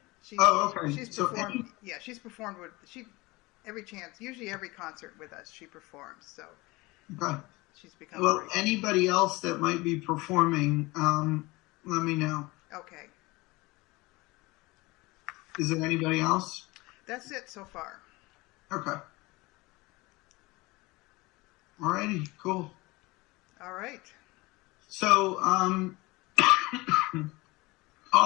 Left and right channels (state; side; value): quieter; right; 22.5 dB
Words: Okay. She's performed. She's performed with every chance, usually every concert with us. She performs. So okay. She's become. Well, great. Anybody else that might be performing, let me know. Okay. Is there anybody else? That's it so far. Okay. Alrighty, cool. All right. So,